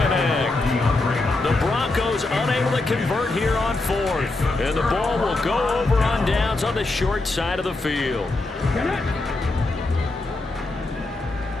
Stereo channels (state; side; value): quieter; right; 3.0 dB